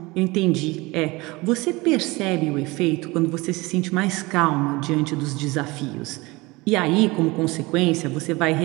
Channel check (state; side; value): quieter; left; 22.9 dB